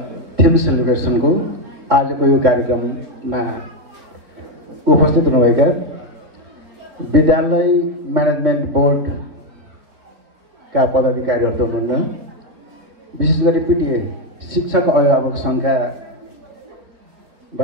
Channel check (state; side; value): late; left; 3.9 ms